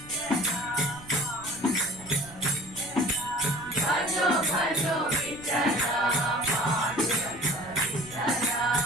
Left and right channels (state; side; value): noise; right; rumble, 21 dB below the sound